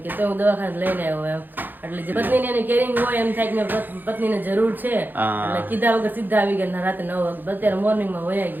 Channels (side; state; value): left; late; 0.089 ms